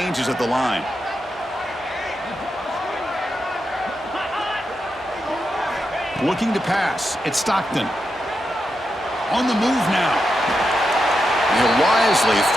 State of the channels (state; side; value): normal; both; correlation 0.86